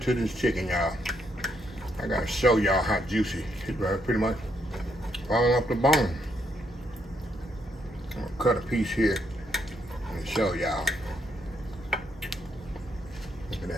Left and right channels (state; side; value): normal; both; correlation 0.76